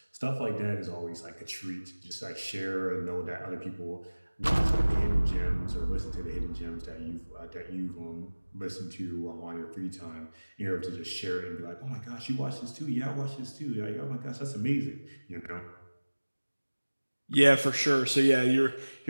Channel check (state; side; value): inverted; both; correlation -1.00